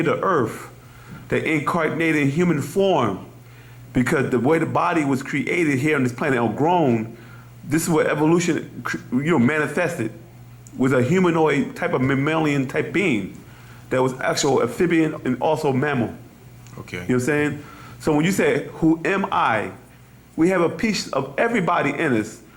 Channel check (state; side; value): identical; both; correlation 1.00